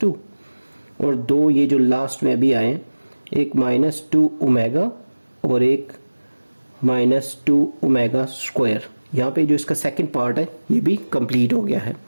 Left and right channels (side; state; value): both; inverted; correlation -1.00